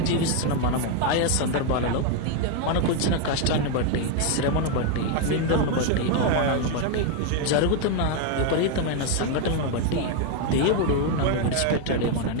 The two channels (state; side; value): different; both; correlation 0.01